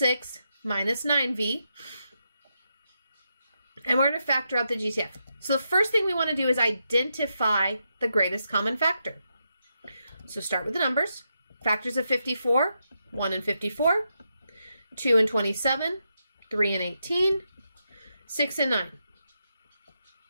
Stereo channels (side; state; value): both; inverted; correlation -0.84